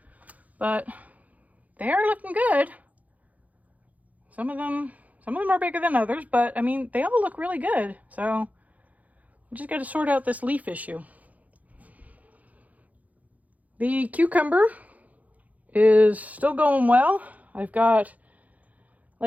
But they are looking good. Some of them are bigger than others, but I mean, they all look really good. So I just got to sort out this leaf issue. The cucumber is still going well. I've got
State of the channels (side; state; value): left; late; 0.075 ms